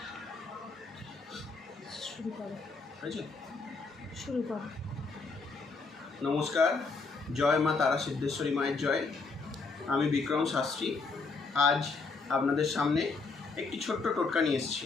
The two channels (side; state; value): right; quieter; 4.2 dB